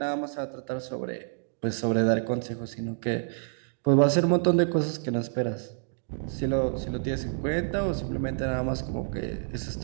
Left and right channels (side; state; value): left; silent; digital silence